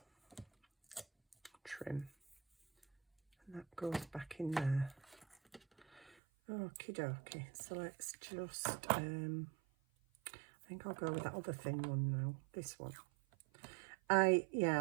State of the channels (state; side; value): drops out; left; at 6.2 s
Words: And that goes back in there. Okie dokie, so let's just, I think I'll go with that other thin one now, this one. I